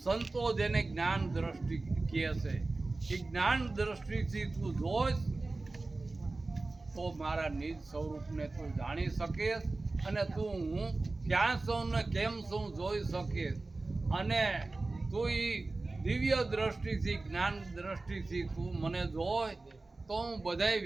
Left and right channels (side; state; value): left; quieter; 3.3 dB